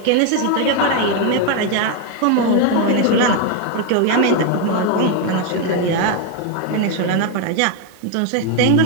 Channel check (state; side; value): different; both; correlation 0.01